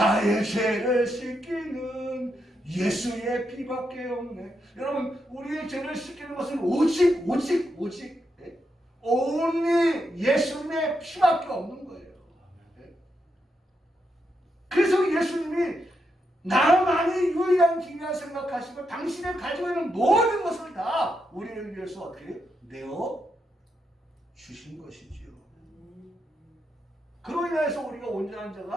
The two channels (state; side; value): normal; both; correlation 0.83